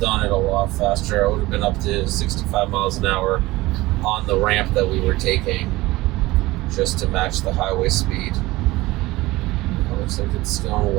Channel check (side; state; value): left; quieter; 19.4 dB